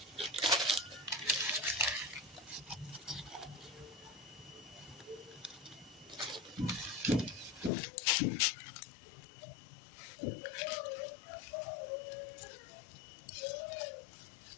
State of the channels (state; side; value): drops out; right; at 7.7 s